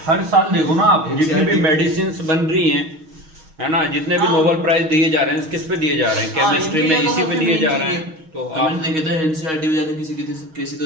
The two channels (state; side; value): late; left; 6.3 ms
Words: हर साल देखो ना आप, जितनी भी मेडिसिन बन रही हैं, है ना, जितने भी नोबेल प्राइज दिए जा रहे हैं, किस पे दिए जा रहे हैं, केमिस्ट्री में इसी पे दिए जा रहे हैं। तो आप देखे थे NCERT में जाके किसी